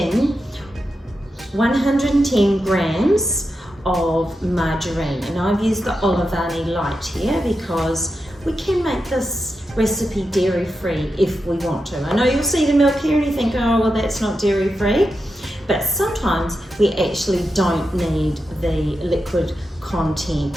110 grams of margarine, and I've used the Olivani Light here because we can make this recipe dairy free if we want to. I know you'll see the milk here and you think, oh well, that's not dairy free, but sometimes we actually don't need the liquid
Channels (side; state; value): both; normal; correlation 0.88